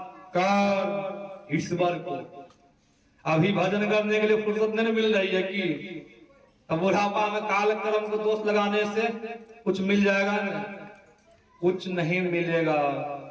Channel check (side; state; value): both; identical; correlation 1.00